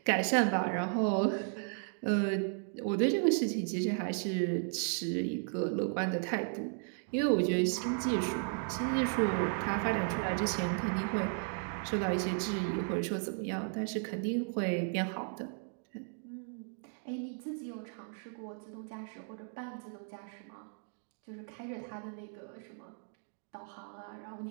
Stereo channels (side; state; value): left; silent; 54 dB below the other